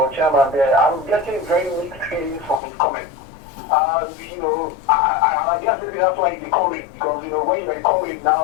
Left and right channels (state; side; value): drops out; right; at 2.6 s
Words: chairman there, I'm getting very mixed feelings from his comments. I guess maybe that's why he's a comrade, because when you're a comrade